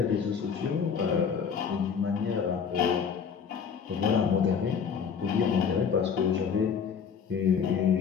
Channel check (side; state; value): right; quieter; 6.7 dB